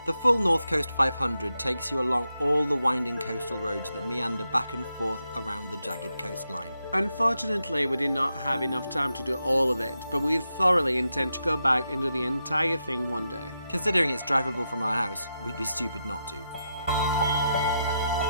the full North Coast 500 takes you along all the winding coastal roads that meander back and forth around the jagged coastline. Unfortunately, we did not have enough time to do all of it, but we thoroughly intend to go back and do the entire thing one day. Considering it's drivable from our house, we'd be stupid not to.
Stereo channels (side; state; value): both; inverted; correlation -0.85